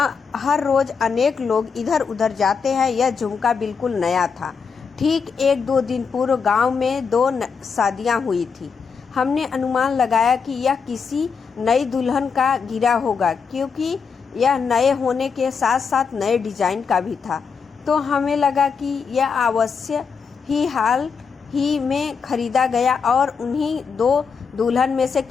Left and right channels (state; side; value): quieter; right; 5.8 dB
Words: हर रोज अनेक लोग इधर उधर जाते हैं। यह झुमका बिल्कुल नया था। ठीक 1-2 दिन पूर्व गांव में 2 शादियां हुई थी। हमने अनुमान लगाया कि यह किसी नई दुल्हन का गिरा होगा, क्योंकि यह नए होने के साथ साथ नए डिजाइन का भी था। तो हमें लगा कि यह अवश्य ही हाल ही में खरीदा गया और उन्हीं 2 दुल्हन में से